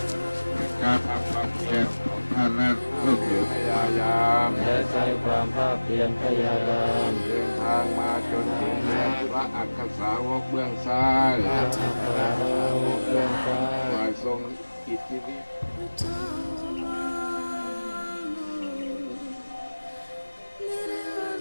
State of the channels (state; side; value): inverted; both; correlation -1.00